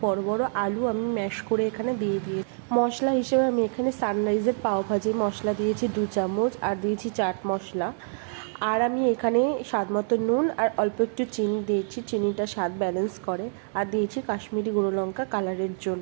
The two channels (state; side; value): silent; left; 61 dB below the other